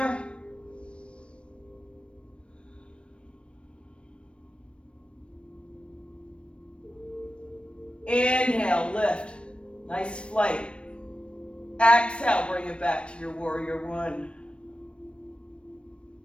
Inhale, lift. Nice flight. Exhale, bring it back to your warrior one.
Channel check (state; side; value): late; right; 0.059 ms